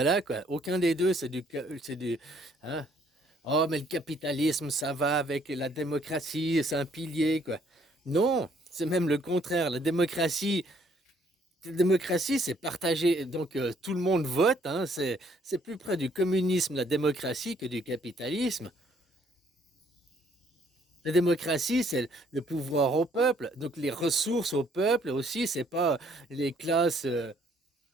quoi. Aucun des deux, c'est du, hein? Oh, mais le capitalisme, ça va avec la démocratie, c'est un pilier, quoi. Non, c'est même le contraire. La démocratie, c'est partagé. Donc tout le monde vote, hein. C'est plus près du communisme, la démocratie, que du capitalisme. La démocratie, c'est le pouvoir au peuple. Donc les ressources au peuple aussi, c'est pas les classes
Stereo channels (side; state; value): both; normal; correlation 0.65